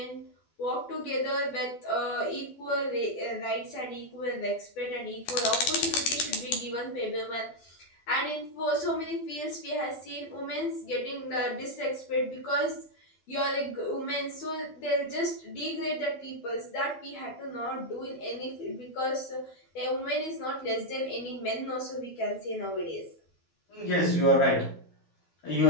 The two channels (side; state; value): right; late; 12 ms